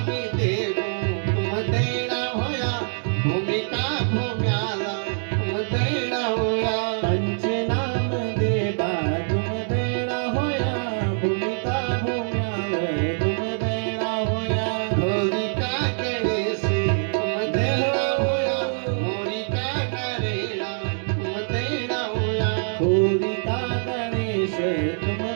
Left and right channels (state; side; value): silent; left; 62 dB below the other